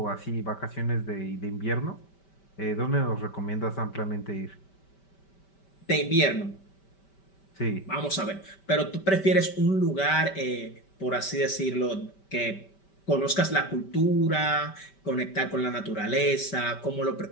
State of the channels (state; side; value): late; right; 5.1 ms